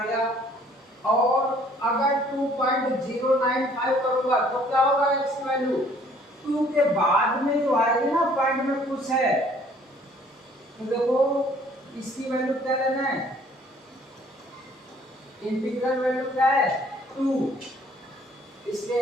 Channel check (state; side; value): normal; both; correlation 0.58